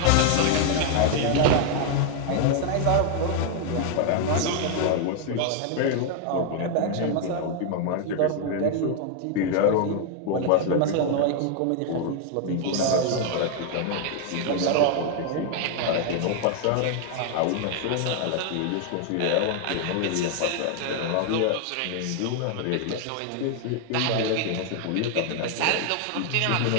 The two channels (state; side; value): different; both; correlation 0.00